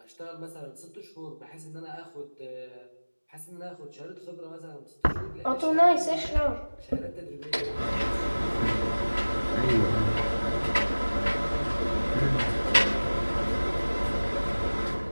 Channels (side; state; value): both; inverted; correlation -1.00